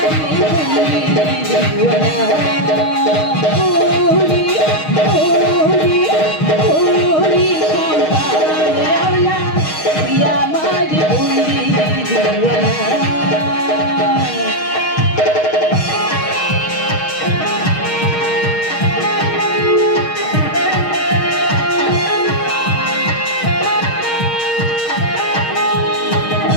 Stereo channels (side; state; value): right; late; 6.4 ms